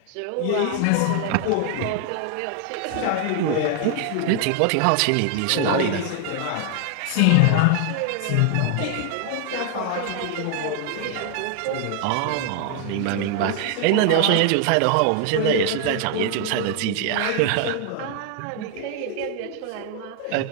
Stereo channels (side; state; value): both; different; correlation 0.00